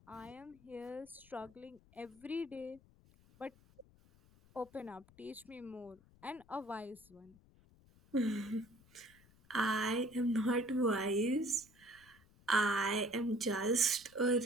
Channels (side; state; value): left; noise; rumble, 27 dB below the sound